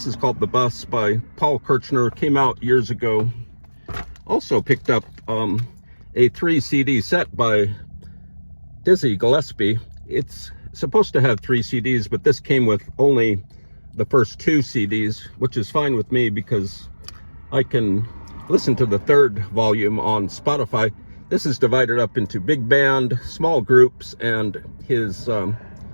is called The Bus by Paul Kirchner. Came out years ago. Also picked up a 3 CD set by Dizzy Gillespie. It's supposed to have 3 CDs, but this came with only the first 2 CDs, which is fine with me because I can listen to the 3rd volume on Spotify. This is divided up into big band, small groups, and his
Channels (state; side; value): inverted; both; correlation -1.00